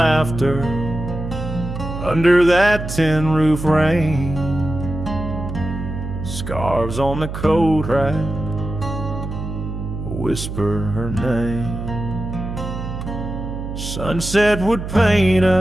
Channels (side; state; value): right; noise; hum, 7 dB below the sound